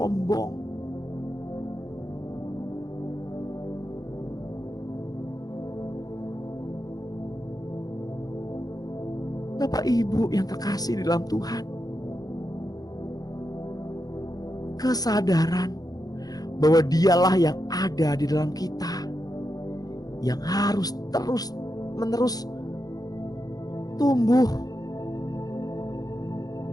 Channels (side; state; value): right; late; 0.18 ms